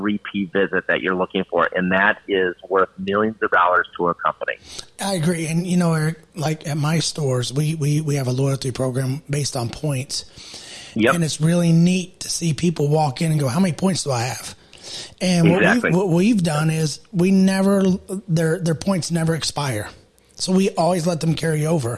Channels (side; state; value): both; identical; correlation 1.00